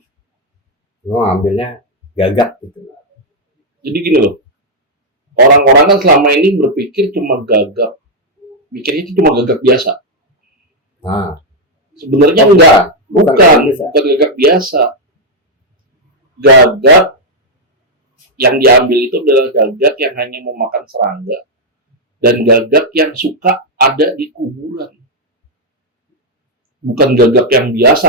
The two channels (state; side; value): normal; both; correlation -0.02